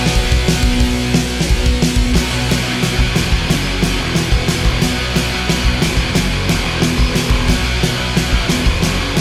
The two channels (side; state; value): both; identical; correlation 1.00